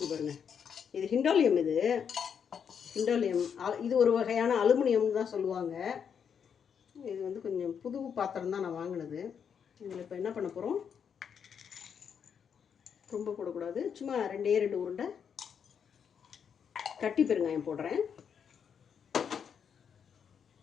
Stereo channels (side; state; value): right; quieter; 7.4 dB